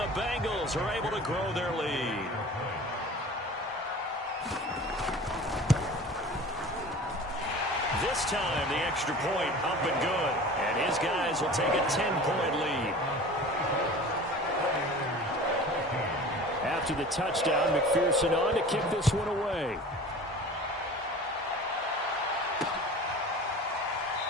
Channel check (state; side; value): normal; both; correlation 0.39